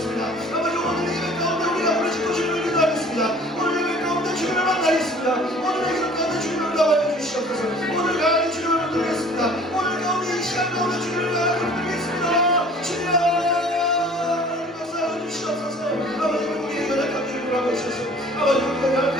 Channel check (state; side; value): normal; both; correlation 0.50